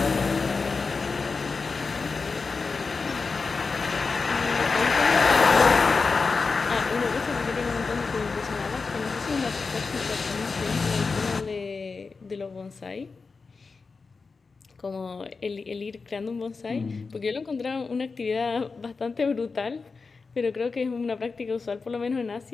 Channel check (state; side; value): quieter; right; 4.5 dB